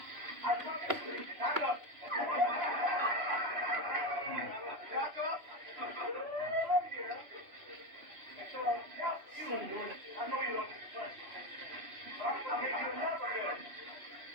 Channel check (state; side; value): late; left; 3.0 ms